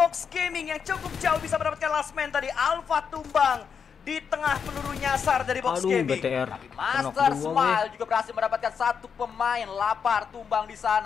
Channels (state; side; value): quieter; right; 6.7 dB